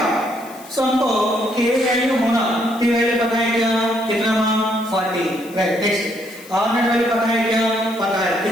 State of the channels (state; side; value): noise; left; hiss, 21 dB below the sound